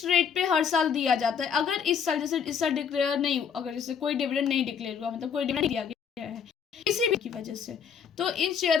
रेट पे हर साल दिया जाता है। अगर इस साल, जैसे इस साल डिक्लेयर नहीं, अगर जैसे कोई डिविडेंड नहीं डिक्लेयर हुआ, मतलब कोई डिविडेंड दिया गया है किसी भी की वजह से, तो इन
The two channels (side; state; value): right; quieter; 7.1 dB